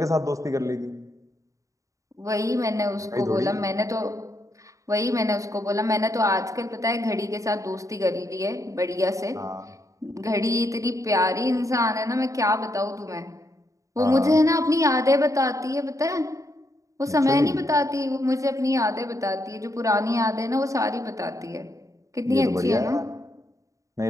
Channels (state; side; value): late; left; 0.16 ms